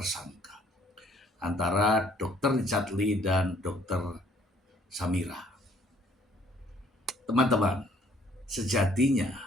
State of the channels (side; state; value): both; normal; correlation 0.62